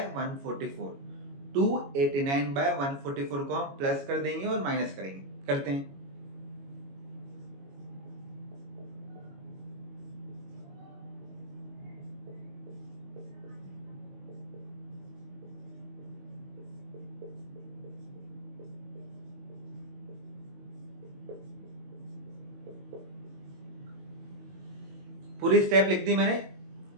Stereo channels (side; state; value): left; late; 22 ms